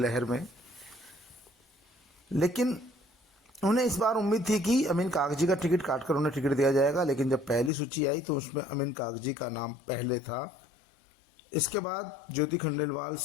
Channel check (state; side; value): drops out; right; at 7.7 s